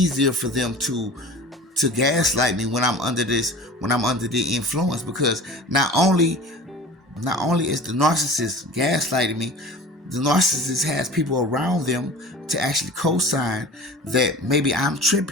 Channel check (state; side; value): normal; both; correlation 0.39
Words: for them to gaslight me when I'm under the influence, because not only is the narcissist gaslighting me, the narcissist has people around them to actually co-sign that maybe I'm